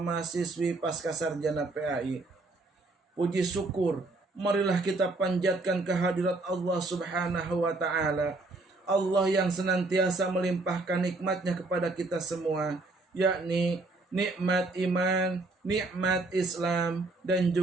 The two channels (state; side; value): quieter; left; 3.2 dB